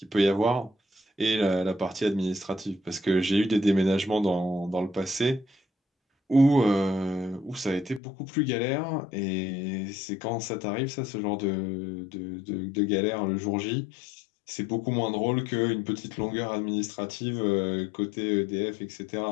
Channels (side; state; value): right; drops out; at 8.0 s